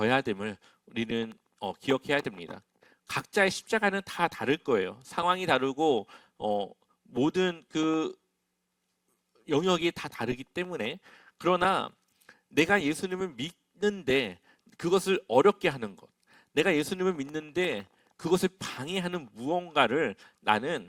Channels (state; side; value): identical; both; correlation 1.00